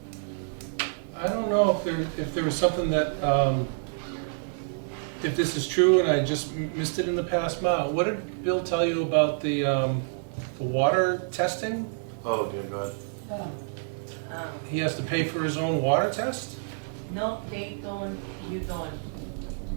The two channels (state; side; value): silent; left; digital silence